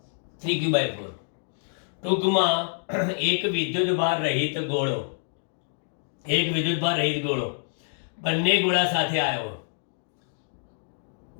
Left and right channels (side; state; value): right; silent; digital silence